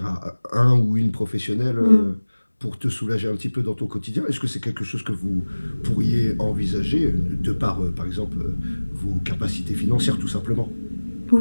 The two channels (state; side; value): inverted; both; correlation -1.00